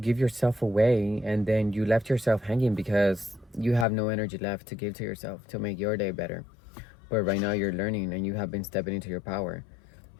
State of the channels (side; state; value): right; drops out; at 3.9 s